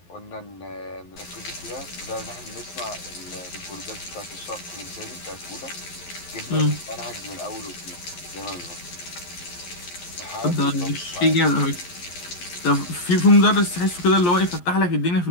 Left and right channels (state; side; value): late; right; 11 ms